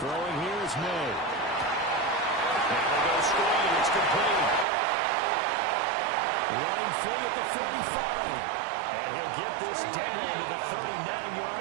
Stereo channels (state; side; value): drops out; left; at 4.7 s